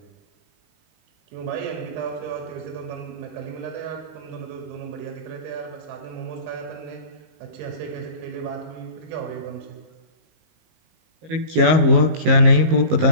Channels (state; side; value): late; left; 19 ms